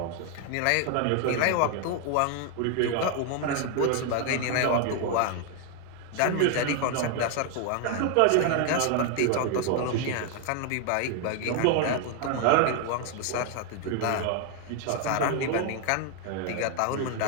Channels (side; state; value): both; different; correlation 0.00